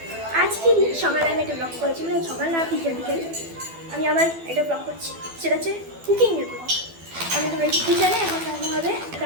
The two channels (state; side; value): late; left; 12 ms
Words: আজকে সকালে আমি একটা ব্লগ করেছি, মানে সকাল না বিকেল বিকেল আমি আমার একটা ব্লগ করছি, সেটা হচ্ছে কুকিংয়ের ব্লগ। আমি তো এই কিচেনে এখন রান্না হবে,